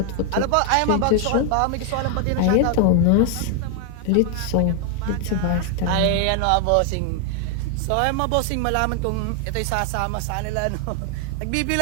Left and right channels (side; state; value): both; different; correlation 0.00